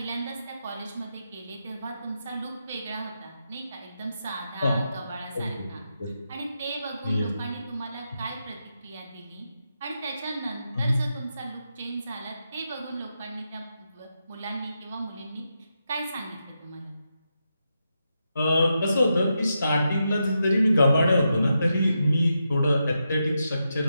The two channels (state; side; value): inverted; both; correlation -0.86